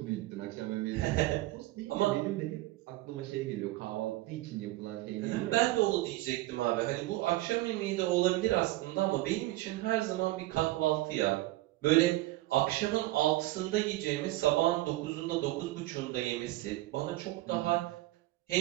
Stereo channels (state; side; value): quieter; left; 18.1 dB